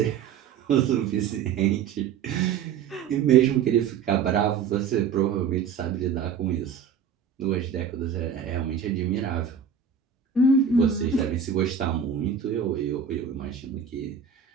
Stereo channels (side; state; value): left; quieter; 7.2 dB